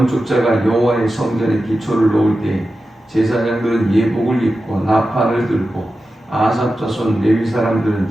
여호와의 성전의 기초를 놓을 때 제사장들은 예복을 입고 나팔을 들고 아삽 자손 레위 사람들은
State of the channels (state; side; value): normal; both; correlation 0.92